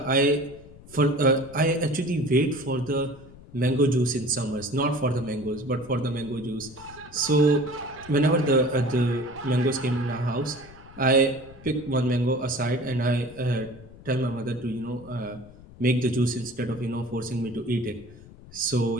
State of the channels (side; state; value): left; noise; rumble, 20 dB below the sound